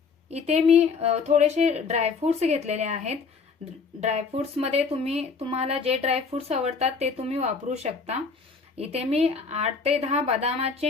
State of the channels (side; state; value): right; quieter; 5.0 dB